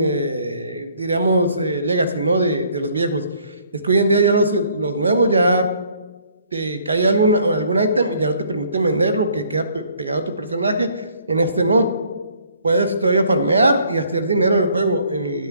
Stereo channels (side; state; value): both; inverted; correlation -0.62